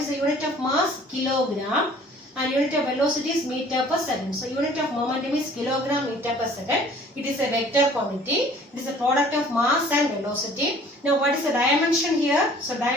the unit of mass? Kilogram. And unit of velocity is meter per second. So unit of momentum is kilogram meter per second. It is a vector quantity. It is a product of mass and velocity. Now what is the dimension here? So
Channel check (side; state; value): both; normal; correlation 0.52